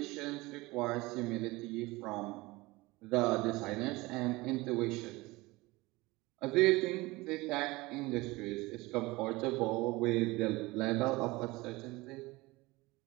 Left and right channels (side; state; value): left; quieter; 21.7 dB